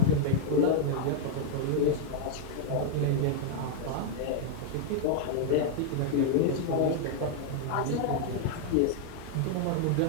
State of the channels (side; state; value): both; different; correlation 0.00